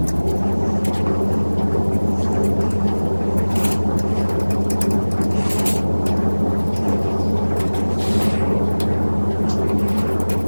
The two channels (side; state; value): both; inverted; correlation -1.00